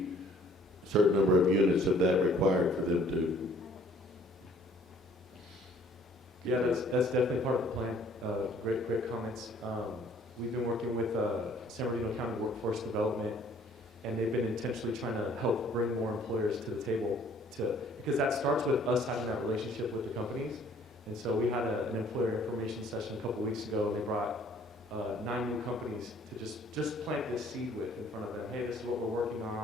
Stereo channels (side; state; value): both; normal; correlation 0.57